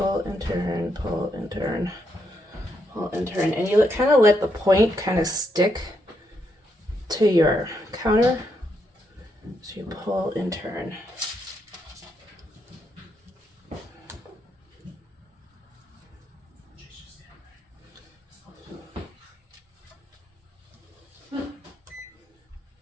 and turn, pull and turn, pull and turn. And you kind of let the point kind of stick to your counter. So you pull and turn.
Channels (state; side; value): normal; both; correlation 0.79